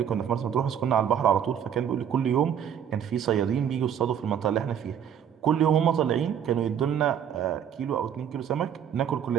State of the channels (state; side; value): quieter; left; 8.9 dB